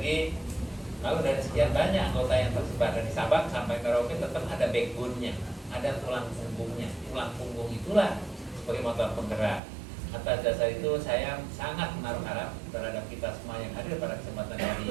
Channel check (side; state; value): left; drops out; at 9.6 s